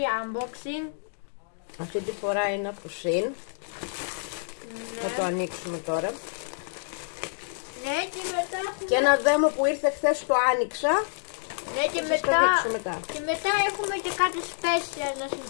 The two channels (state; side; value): silent; right; digital silence